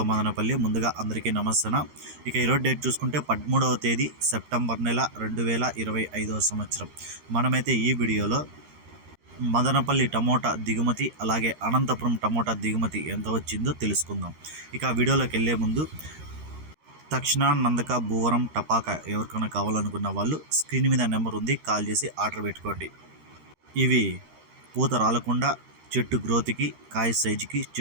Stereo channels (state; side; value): late; left; 13 ms